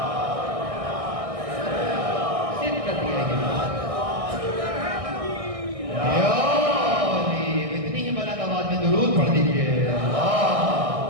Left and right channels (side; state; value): left; late; 1.6 ms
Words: اتنی ہی بلند آواز میں درود پڑھ دیجیے.